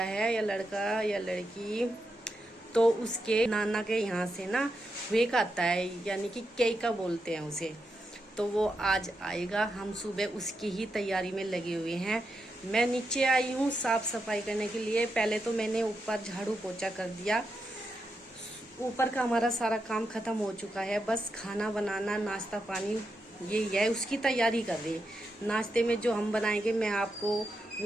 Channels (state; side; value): normal; both; correlation 0.85